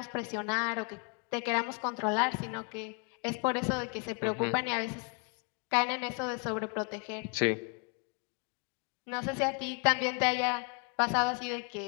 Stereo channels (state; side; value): quieter; right; 34.1 dB